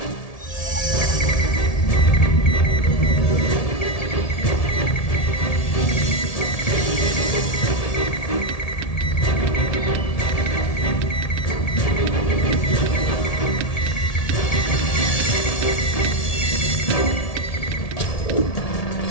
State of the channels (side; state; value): right; late; 1.7 ms